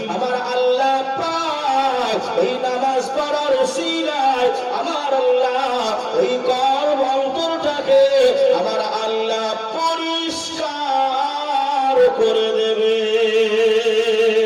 আমার আল্লাহ পাক এই নামাজ পড়ার উসিলায় আমার আল্লাহ ওই কলব অন্তরটাকে আমার আল্লাহ পরিষ্কার করে দেবে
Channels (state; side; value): identical; both; correlation 1.00